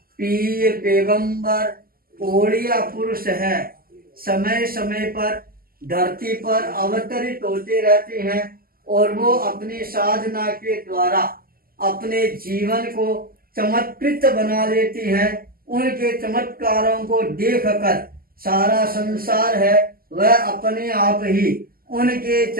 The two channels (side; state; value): left; late; 0.42 ms